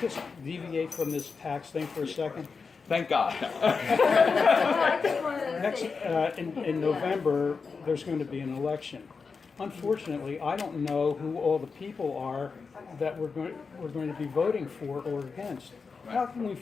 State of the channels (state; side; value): quieter; right; 5.0 dB